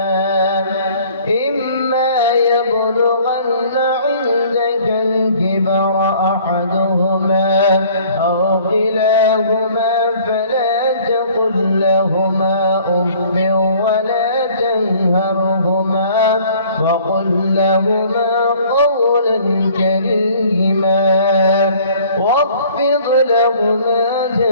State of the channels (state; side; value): inverted; both; correlation -0.54